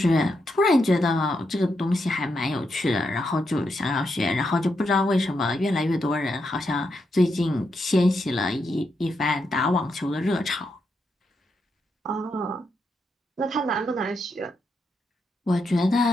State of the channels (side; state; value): both; normal; correlation 0.82